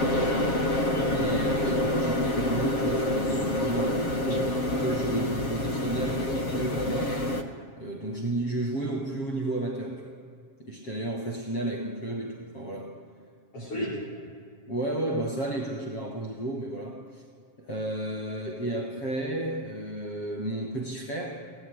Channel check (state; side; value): late; right; 7.4 ms